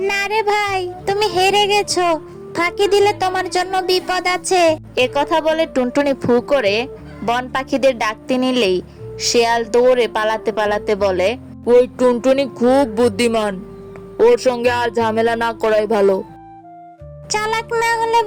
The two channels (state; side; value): identical; both; correlation 1.00